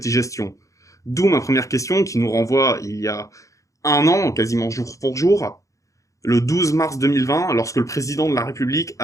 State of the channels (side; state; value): right; late; 0.16 ms